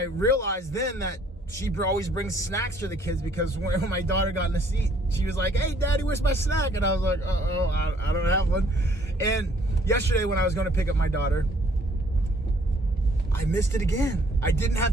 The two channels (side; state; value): both; normal; correlation 0.62